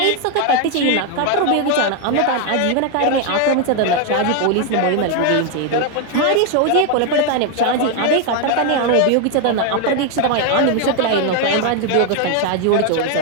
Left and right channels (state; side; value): different; both; correlation 0.01